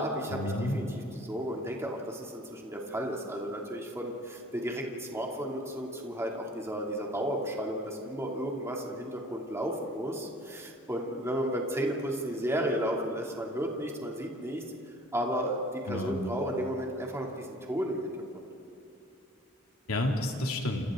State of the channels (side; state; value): both; normal; correlation 0.50